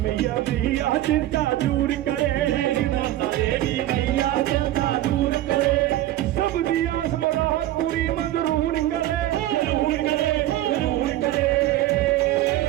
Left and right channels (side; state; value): left; quieter; 14.4 dB